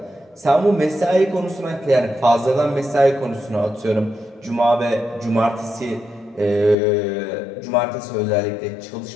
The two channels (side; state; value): right; drops out; at 6.8 s